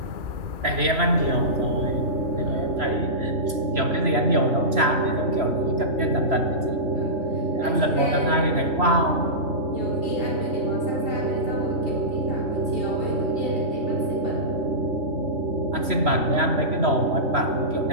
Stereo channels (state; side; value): late; left; 3.0 ms